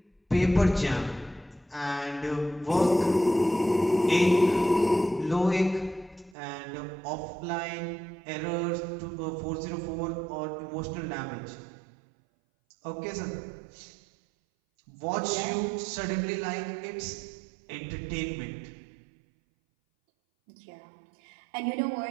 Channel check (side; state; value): left; drops out; at 6.4 s